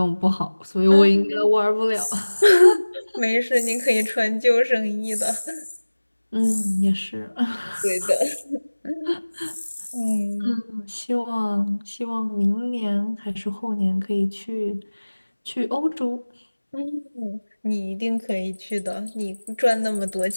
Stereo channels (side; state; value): both; inverted; correlation -1.00